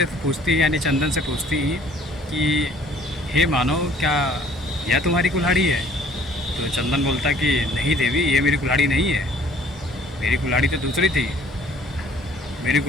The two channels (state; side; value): normal; both; correlation 0.56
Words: से पूछती है, यानी चंदन से पूछती है कि हे मानो, क्या यह तुम्हारी कुल्हाड़ी है। तो चंदन बोलता कि नहीं देवी, ये मेरी कुल्हाड़ी नहीं है, मेरी कुल्हाड़ी तो दूसरी थी, मेरी